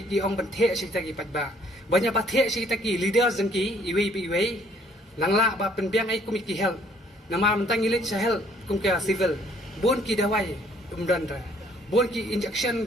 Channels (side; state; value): both; normal; correlation 0.62